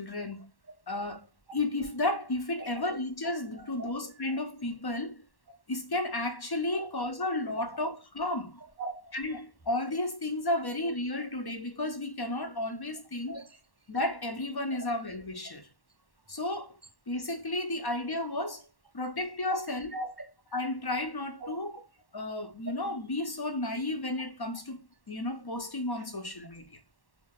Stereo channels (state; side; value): late; right; 1.1 ms